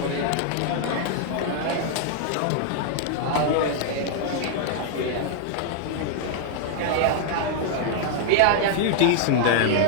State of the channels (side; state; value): both; different; correlation -0.01